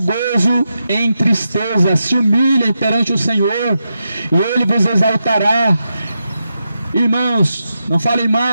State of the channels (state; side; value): inverted; both; correlation -0.87